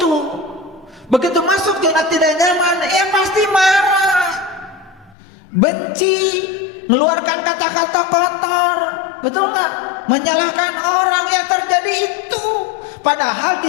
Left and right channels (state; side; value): drops out; right; at 5.2 s